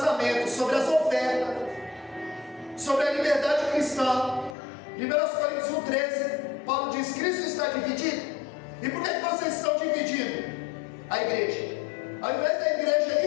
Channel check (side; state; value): right; drops out; at 4.5 s